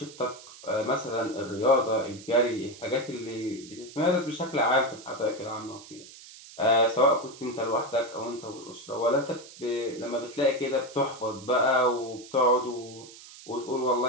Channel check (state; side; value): noise; right; hiss, 18 dB below the sound